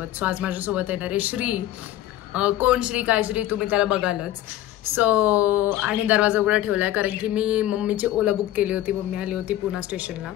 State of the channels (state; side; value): quieter; right; 13.9 dB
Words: सो आज माझ्यासोबत येणार आहे श्री. कोण श्री काय श्री तुम्ही त्याला बघालच. सो आणि दरवाजा उघडा ठेवलाय कारण की मी मम्मीची ओला बुक केली होती. मम्मी आली होती पुणे स्टेशनला.